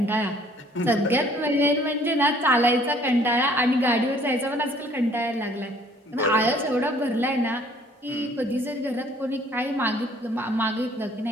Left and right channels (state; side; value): normal; both; correlation 0.58